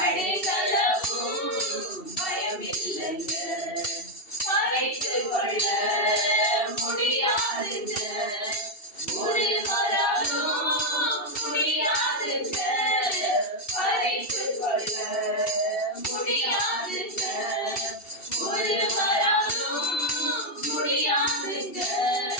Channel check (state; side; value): late; right; 2.7 ms